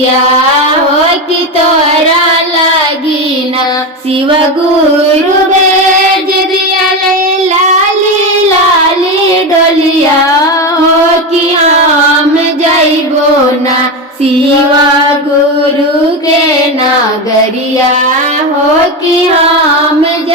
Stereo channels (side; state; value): both; normal; correlation 0.16